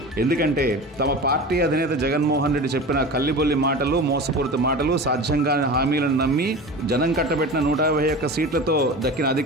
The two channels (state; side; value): normal; both; correlation 0.32